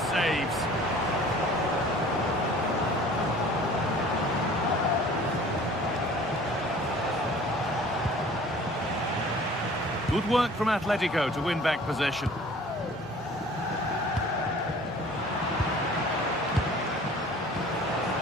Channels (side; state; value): both; normal; correlation 0.48